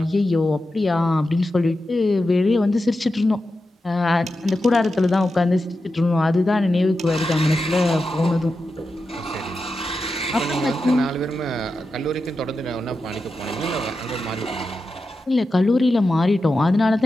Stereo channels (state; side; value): normal; both; correlation 0.90